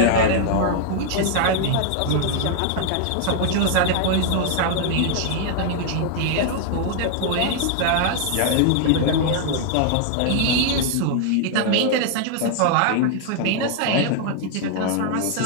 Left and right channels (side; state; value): both; different; correlation 0.00